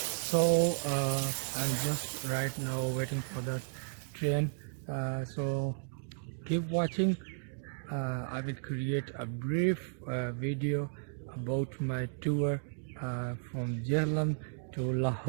I'm just right now waiting for the train. So keep watching. I will create a brief video about my tour from Jhelum to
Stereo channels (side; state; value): left; silent; digital silence